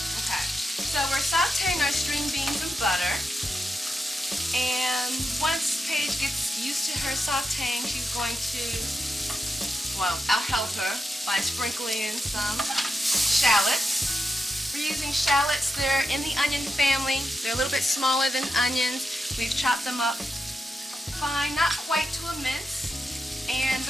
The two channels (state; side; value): normal; both; correlation 0.87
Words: Okay. So we're sauteing our string beans in butter, and once Paige gets used to her sauteing, she's going to well, I'll help her by sprinkling in some shallots. We're using shallots. They're in the onion family. They're a little bit smaller than onions. We've chopped them up fine, not quite to a mince. And